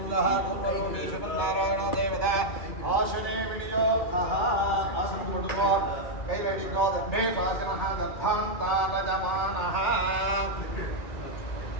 குர்வரோமேஷ நாராயண தேவதா ஆசனே விநியோகஹ ஆசனம் போட்டுக்கோ கையில் அடிக்கோ தர்மே ஆசனஹ தர்பாந்தாலதமானஹ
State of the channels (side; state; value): right; late; 2.2 ms